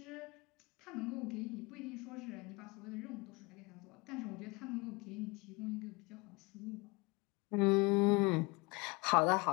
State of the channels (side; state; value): right; quieter; 26.5 dB